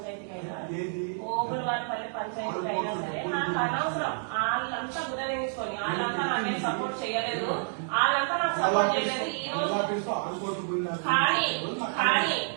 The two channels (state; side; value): silent; left; digital silence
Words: అయినా ఓబులవారిపల్లి పంచాయతీ అయినా సరే నాకు అనవసరం. వాళ్ళంతా గుర్తించుకొని వాళ్ళంతా నాకేం సపోర్ట్ చేయలేదు, వాళ్ళంతా నాకు సపోర్ట్ చేయలేదు. ఈ రోజు